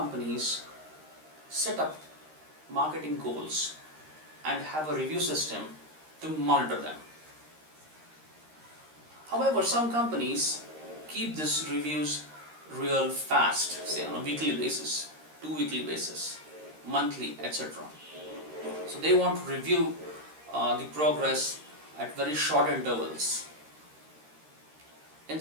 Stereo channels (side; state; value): left; late; 13 ms